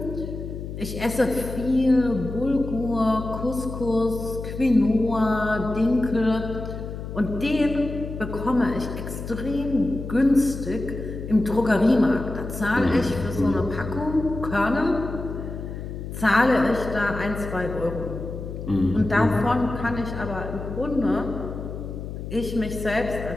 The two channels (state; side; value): noise; left; hum, 8 dB below the sound